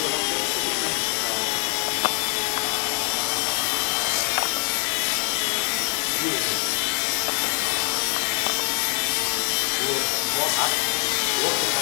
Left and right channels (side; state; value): right; quieter; 36.8 dB